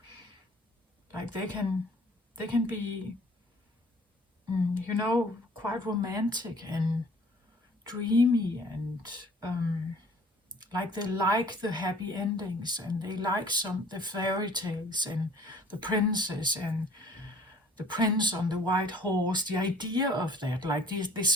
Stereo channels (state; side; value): normal; both; correlation 0.52